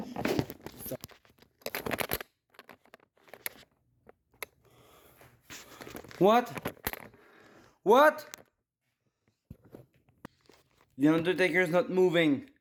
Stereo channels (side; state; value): both; identical; correlation 1.00